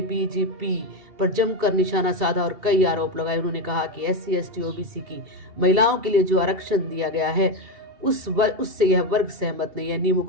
बीजेपी पर जमकर निशाना साधा और कई आरोप लगाए। उन्होंने कहा कि SC ST OBC की महिलाओं के लिए जो आरक्षण दिया गया है उससे यह वर्ग सहमत नहीं है, नियमों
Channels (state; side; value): late; left; 2.7 ms